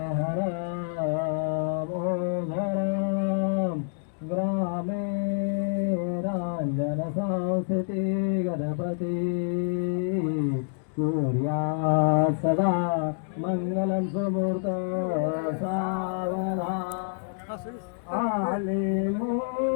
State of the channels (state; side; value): silent; right; digital silence